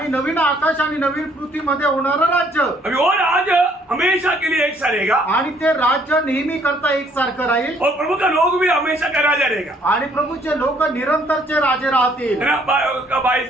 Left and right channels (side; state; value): both; normal; correlation 0.64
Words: नवीन आकाश आणि नवीन पृथ्वीमध्ये होणारं राज्य। अभी वो राज हमेशा के लिए एक सा रहेगा आणि ते राज्य नेहमी करता एकसारखं राहील। और प्रभु का लोग भी हमेशा का राजा रहेगा। आणि प्रभूचे लोक निरंतरचे राजे राहतील। है ना?